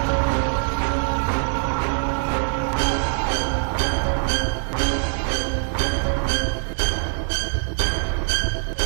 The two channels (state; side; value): silent; left; 56 dB below the other